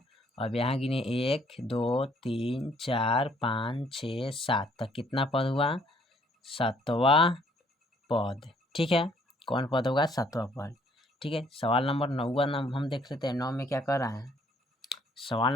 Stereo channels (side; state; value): both; normal; correlation 0.63